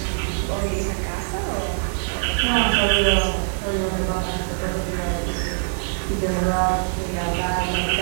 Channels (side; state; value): left; silent; digital silence